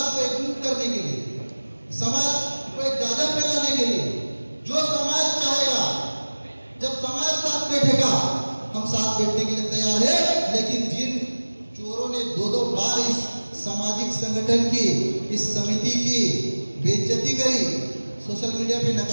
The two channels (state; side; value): inverted; both; correlation -1.00